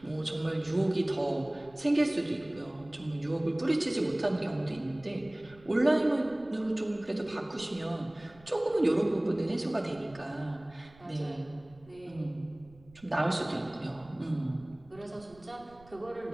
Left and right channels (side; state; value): right; noise; rumble, 25 dB below the sound